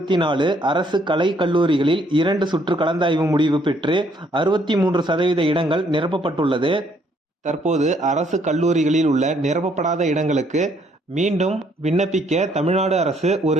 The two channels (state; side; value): normal; both; correlation 0.67